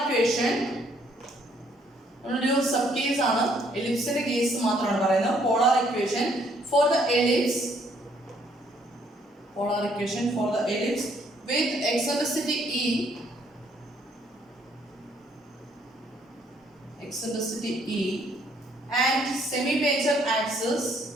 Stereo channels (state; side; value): normal; both; correlation 0.67